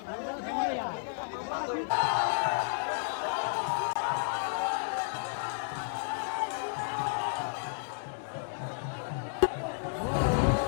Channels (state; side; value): silent; right; 56 dB below the other